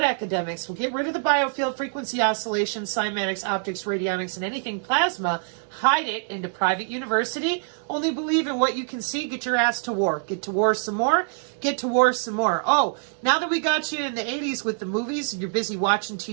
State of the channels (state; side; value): silent; left; digital silence